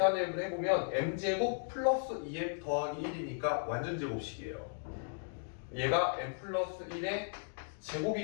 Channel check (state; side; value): silent; right; digital silence